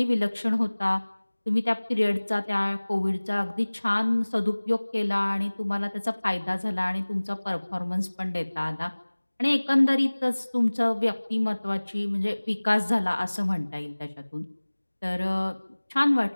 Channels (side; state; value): both; inverted; correlation -1.00